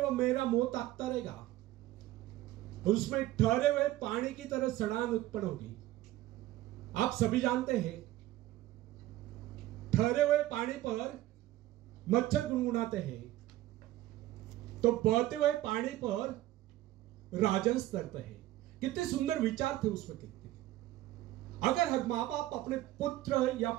मेरा मुंह ताकता रहेगा, उसमें ठहरे हुए पानी की तरह सड़ान उत्पन्न होगी. आप सभी जानते हैं, ठहरे हुए पानी पर मच्छर गुनगुनाते हैं तो बहते हुए पानी पर राजहंस तैरते हैं. कितने सुंदर विचार थे उसमें. कितने, अगर हर माँ बाप अपने पुत्र या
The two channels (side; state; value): left; quieter; 15.4 dB